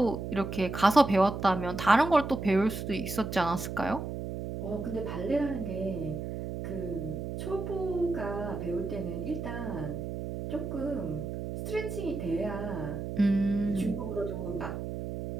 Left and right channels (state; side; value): noise; right; hum, 5 dB below the sound